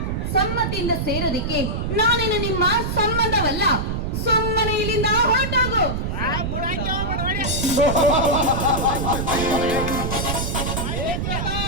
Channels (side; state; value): right; noise; rumble, 1 dB below the sound